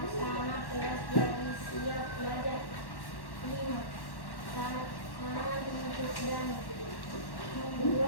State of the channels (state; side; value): late; right; 1.1 ms